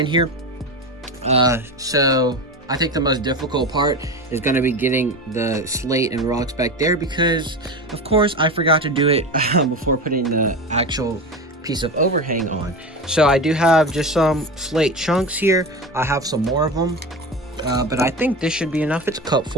here. So I think the most difficult part is going to be getting the slate and rocks back there, because of course I forgot to do it before putting the actual piece of overhang on. So I do have just some slate chunks here. I have some more of them, but I think this should be enough. It's a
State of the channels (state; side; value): normal; both; correlation 0.25